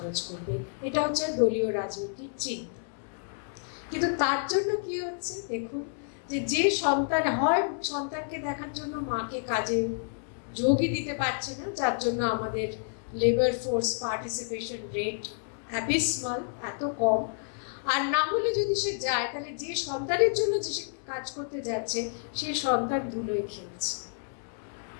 করবে? এটা হচ্ছে দলীয় রাজনীতির চিন্তা। কিন্তু তার জন্য কি হচ্ছে দেখুন, যে সন্তান হয়, সন্তানকে দেখার জন্য মাকে কাজে যোগই দিতে পারছে না, যার জন্য আমাদের লেবার ফোর্স পার্টিসিপেশন রেট অ্যাবিসমাল, এত কম। আর না হলে যদি সে যায়, তাহলে যে সন্তানের জন্য যে সে কাজ করতে যাচ্ছে, সেই সন্তান ধুলোয় খেলছে।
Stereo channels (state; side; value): silent; right; digital silence